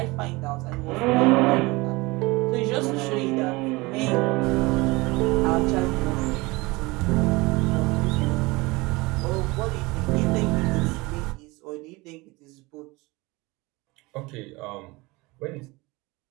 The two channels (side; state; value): left; quieter; 23.3 dB